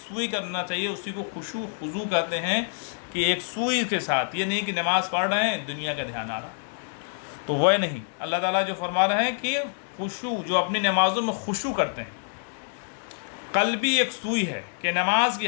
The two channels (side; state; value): right; silent; digital silence